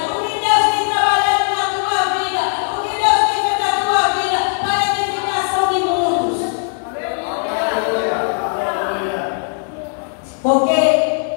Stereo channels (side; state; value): right; silent; 66 dB below the other